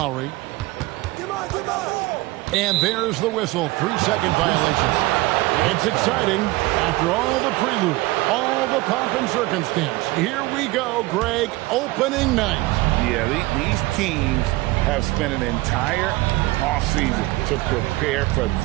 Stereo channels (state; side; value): quieter; left; 20.3 dB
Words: And there's the whistle, 3-second violation. It's exciting after all the prelude, all the pomp and circumstance. Here we go, Greg, opening night. Yeah, these teams have spent an entire offseason to prepare for